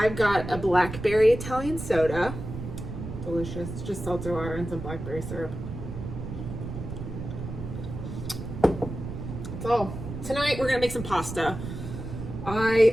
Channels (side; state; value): right; noise; rumble, 8 dB below the sound